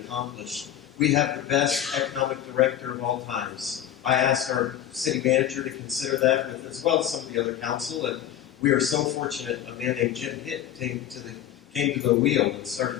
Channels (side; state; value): right; quieter; 11.0 dB